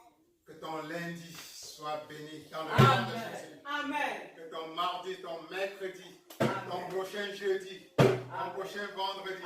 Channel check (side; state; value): both; identical; correlation 1.00